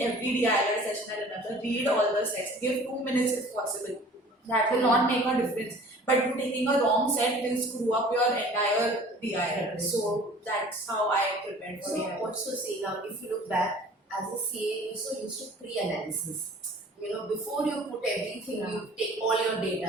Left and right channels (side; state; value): both; normal; correlation 0.48